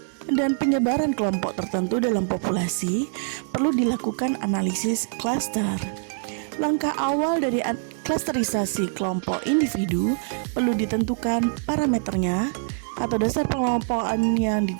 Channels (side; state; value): left; silent; 62 dB below the other